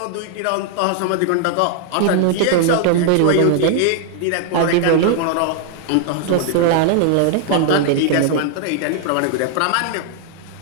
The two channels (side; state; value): both; different; correlation 0.00